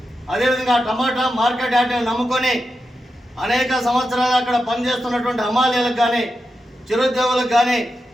అదేవిధంగా టమాటా మార్కెట్ యార్డ్ని నమ్ముకొని అనేక సంవత్సరాలు అక్కడ పనిచేస్తున్నటువంటి హమాలీలకు కానీ, చిరుద్యోగులకు కానీ,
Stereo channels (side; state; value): both; normal; correlation 0.89